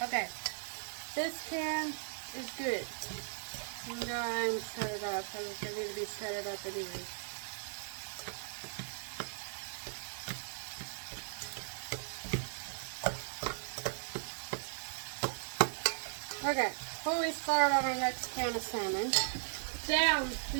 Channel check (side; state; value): left; silent; digital silence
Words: Okay, this can is good. I'm going to set it up because I need to be set it up anyway. Okay, before we start on our next can of salmon, down,